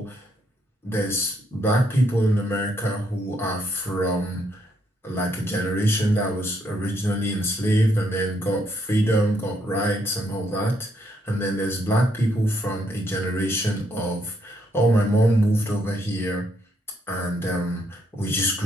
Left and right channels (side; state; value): both; normal; correlation 0.74